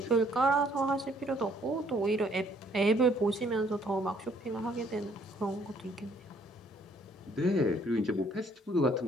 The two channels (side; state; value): both; normal; correlation 0.64